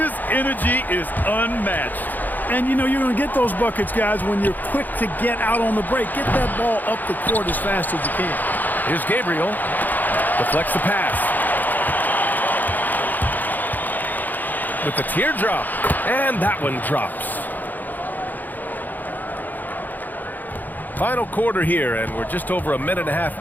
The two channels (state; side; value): late; right; 0.085 ms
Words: energy is unmatched. And, you know, you're going to get those buckets, guys, when you're quick to get out on the break. Get that ball up the court as fast as you can. Here's Gabriel. Deflects the pass. With the teardrop. And that one drops. Final quarter here, and we're just over a minute and a half